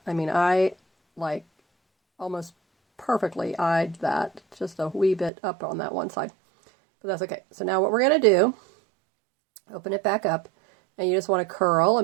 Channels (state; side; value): drops out; left; at 5.3 s